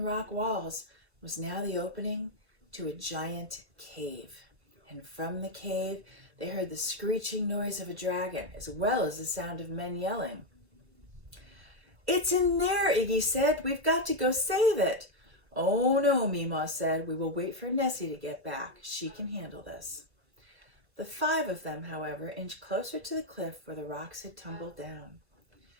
rock walls, was now the opening to a giant cave. And from the cave, they heard the screeching noise of a dragon, as well as the sound of men yelling. It's in there, Iggy said. We've got to go save it. Oh no, Meemaw said. We will wait for Nessie to get back. She can handle this. The five of them, however, inched closer to the cliff where the rocks had tumbled down.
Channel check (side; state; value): left; late; 1.0 ms